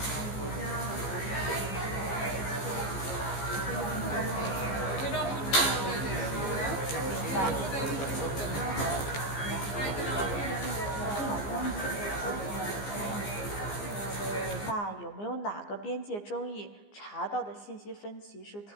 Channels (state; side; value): late; right; 15 ms